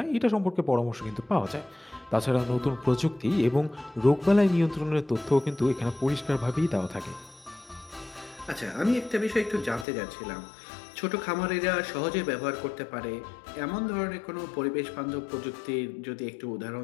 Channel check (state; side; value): drops out; right; at 9.9 s